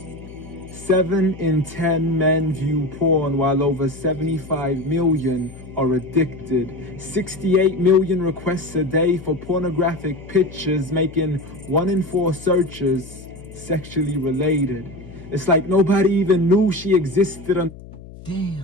7 in 10 men view porn, while over 75 million are addicted. 68 million requests a day for pornographic pictures, making 1 in 4 searches sexually related. It's like nobody even knew she existed.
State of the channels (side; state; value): left; noise; hum, 17 dB below the sound